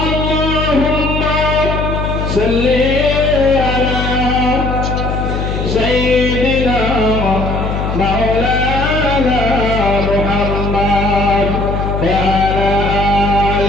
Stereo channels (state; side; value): noise; left; hum, 3 dB below the sound